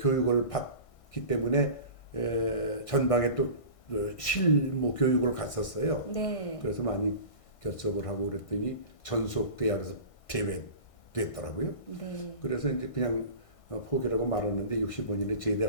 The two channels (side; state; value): right; late; 1.6 ms